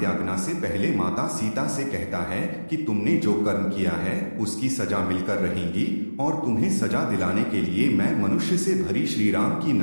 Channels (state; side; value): inverted; both; correlation -1.00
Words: से पहले माता सीता से कहता है कि तुमने जो कर्म किया है उसकी सजा मिलकर रहेगी और तुम्हें सजा दिलाने के लिए मैं मनुष्य से भरी श्री राम की